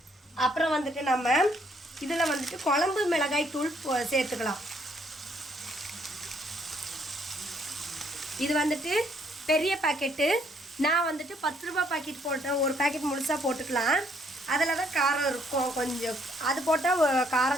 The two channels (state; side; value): normal; both; correlation 0.68